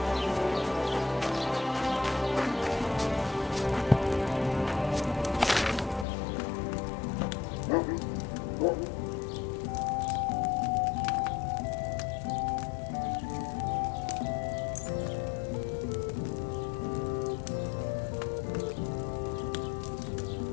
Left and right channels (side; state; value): right; drops out; at 6.1 s